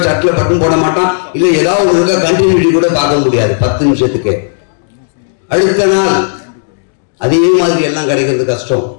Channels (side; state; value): right; silent; digital silence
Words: ஷர்ட்ல பட்டன் போட மாட்டான், இல்ல ஏதாவது ஒன்று இருக்கா கண்டினியூட்டி கூட பார்க்க முடியாது 10 நிமிஷத்துக்கு. அடுத்த நாள் அதே மாதிரி எல்லாம் கிடைக்கிறது கஷ்டம்.